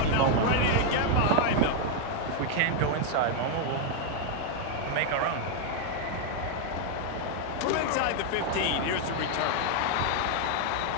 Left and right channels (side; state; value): both; different; correlation 0.00